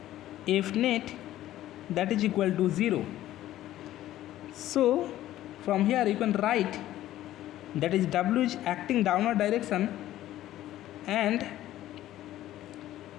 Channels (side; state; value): right; quieter; 13.9 dB